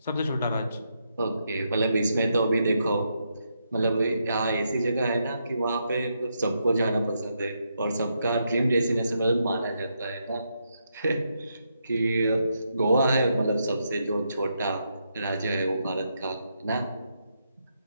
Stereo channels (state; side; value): inverted; both; correlation -0.81